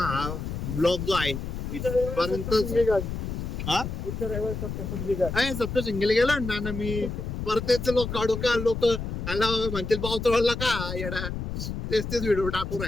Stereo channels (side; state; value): left; noise; rumble, 5 dB below the sound